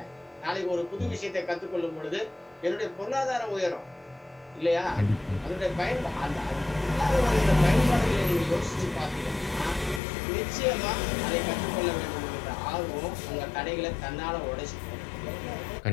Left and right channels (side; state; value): right; drops out; at 10.0 s